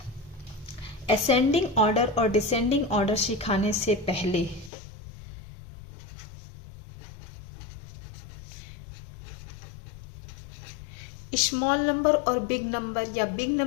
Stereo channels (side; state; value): right; drops out; at 4.7 s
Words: ascending order और डिसेंडिंग ऑर्डर सिखाने से पहले स्मॉल नंबर और बिग नंबर या बिग